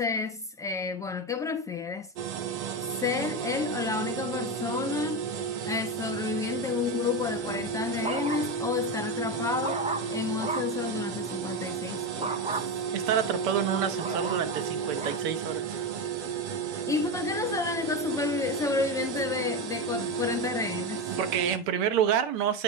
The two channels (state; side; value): normal; both; correlation 0.14